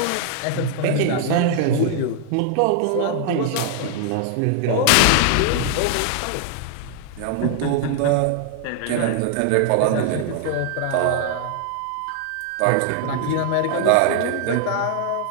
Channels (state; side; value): different; both; correlation 0.00